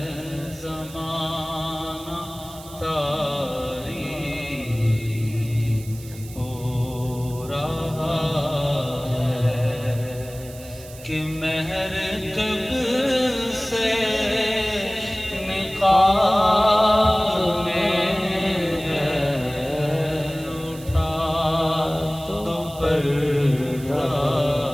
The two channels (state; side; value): noise; right; hiss, 18 dB below the sound